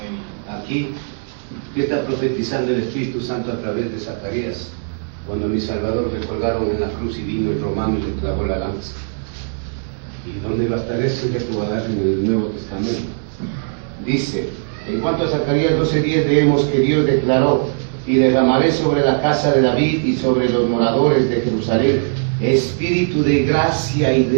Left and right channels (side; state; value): left; silent; digital silence